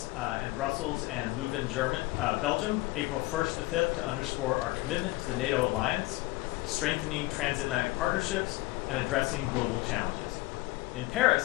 and Brussels and Leuven, Belgium, April 1st to 5th to underscore our commitment to the NATO alliance, strengthening transatlantic partnerships, and addressing global challenges. In Paris,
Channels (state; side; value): quieter; right; 20.3 dB